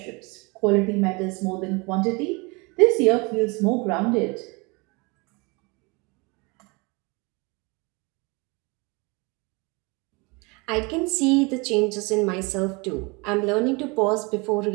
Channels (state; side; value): quieter; left; 28.1 dB